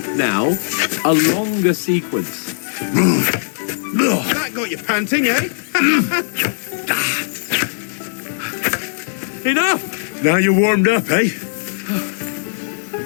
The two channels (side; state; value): right; silent; 67 dB below the other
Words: now. A longer sequence. That got you panting, eh? Enough! Now you're warmed up, eh?